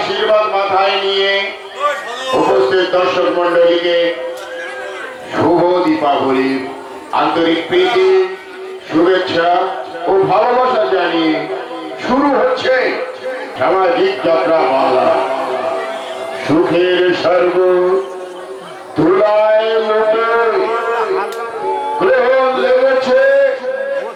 মাথায় নিয়ে উপস্থিত দর্শক মন্ডলীকে শুভ দীপাবলির আন্তরিক প্রীতি, শুভেচ্ছা ও ভালোবাসা জানিয়ে শুরু হচ্ছে সামাজিক যাত্রা বাংলা। সুখের স্বর্গ ধুলায় লোটে গ্রহণ লেগেছে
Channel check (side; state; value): both; identical; correlation 1.00